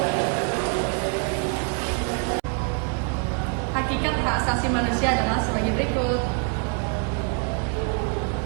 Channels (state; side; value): quieter; left; 39.6 dB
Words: Hakikat hak asasi manusia adalah sebagai berikut.